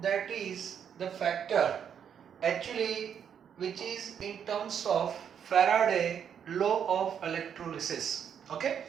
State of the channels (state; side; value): quieter; left; 8.2 dB